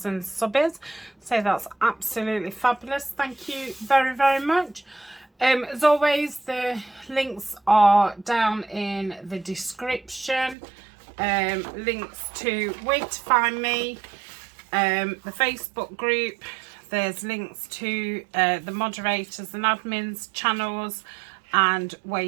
subs, so that's absolutely fabulous. Thank you very, very much. As always, the links are down in the description. Links to where to find me, the Facebook group. There's links to the moderators and admins channels and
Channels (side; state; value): left; drops out; at 10.6 s